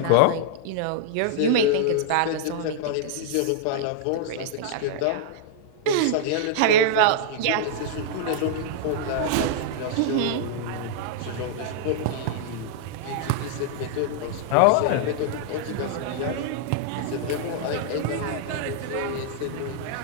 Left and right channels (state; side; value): different; both; correlation -0.01